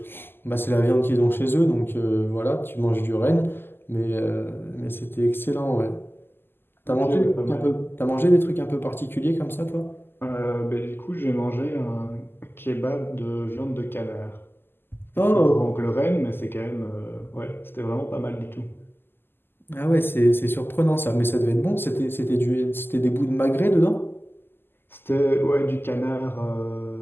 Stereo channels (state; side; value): late; right; 0.10 ms